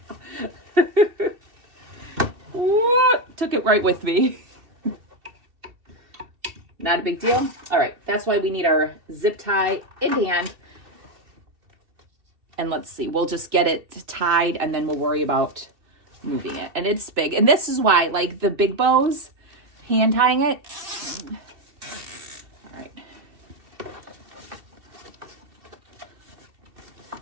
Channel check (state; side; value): late; left; 2.7 ms